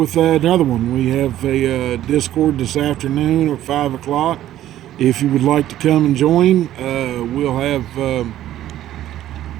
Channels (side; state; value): left; quieter; 12.9 dB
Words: another one. We have a Discord this afternoon at 5 o'clock. If you would like to come and join, we'll have...